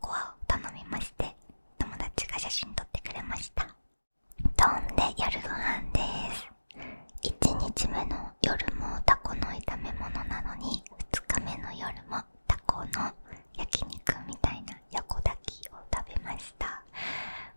アを頼みまして、友達が写真撮ってくれました。飛んで夜ご飯です。1日目の夜もタコの炒め物なのに、2日目の夜もタコの焼肉みたいな横炊きを食べました。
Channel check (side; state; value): both; inverted; correlation -1.00